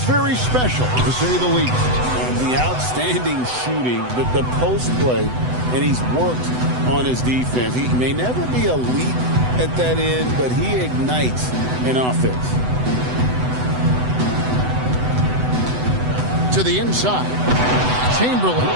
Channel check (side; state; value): left; late; 8.0 ms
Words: very special, to say the least. The outstanding shooting, the post play, and he's worked on his defense. He may never be elite at that end, but he ignites an offense. To the inside, Chamberlain.